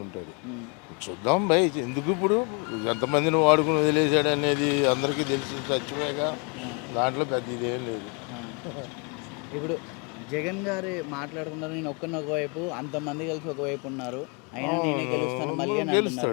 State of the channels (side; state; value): right; quieter; 34.8 dB